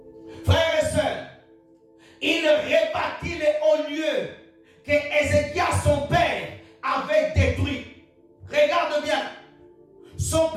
Frères et sœurs, il rebâtit les hauts lieux que Ézéchias, son père, avait détruits. Regarde bien. Son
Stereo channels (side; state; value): both; identical; correlation 1.00